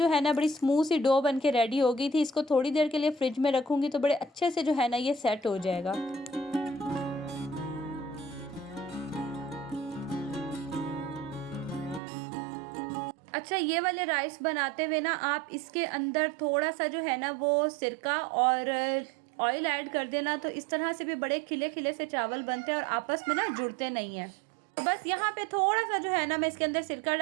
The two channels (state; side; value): drops out; left; at 12.0 s